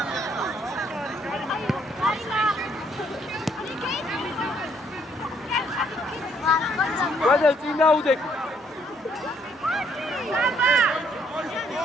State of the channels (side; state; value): both; normal; correlation 0.68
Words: გადაი წინ დაუდეკ.